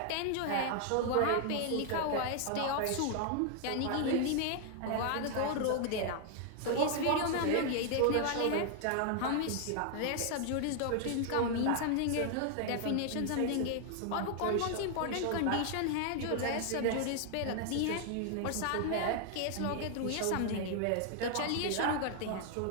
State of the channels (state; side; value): different; both; correlation 0.00